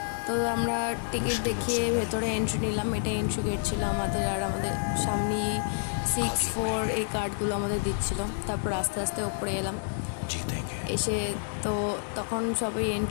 তো আমরা টিকিট দেখিয়ে ভেতরে এন্ট্রি নিলাম। এটা এন্ট্রি গেট ছিল আমাদের, আর আমাদের সামনে 6-4 এই কার্ডগুলো আমাদের দিচ্ছিল। তারপর আস্তে আস্তে ওপরে এলাম। এসে তো তখন সবাই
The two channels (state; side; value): silent; right; digital silence